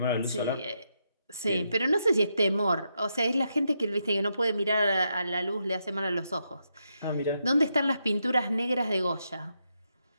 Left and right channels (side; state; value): both; inverted; correlation -0.82